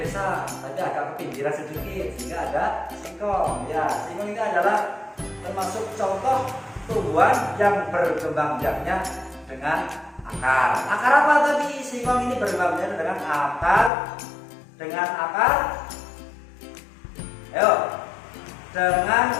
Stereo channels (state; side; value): drops out; right; at 13.9 s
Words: desa, tapi agak ke pinggiran sedikit, sehingga ada singkong. Ya, singkong ini adalah termasuk contoh tumbuhan yang berkembang biaknya dengan akar. Akar apa tadi? Singkong ini berkembang biaknya dengan akar. Dengan akar. Ayo. Dengan